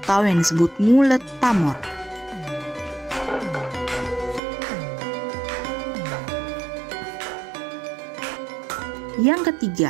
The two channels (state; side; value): drops out; left; at 4.4 s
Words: yang disebut ngulet pamor. Yang